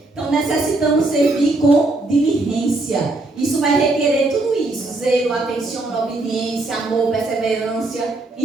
Então necessitamos servir com diligência. Isso vai requerer tudo isso: zelo, atenção, obediência, amor, perseverança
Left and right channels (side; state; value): left; quieter; 3.0 dB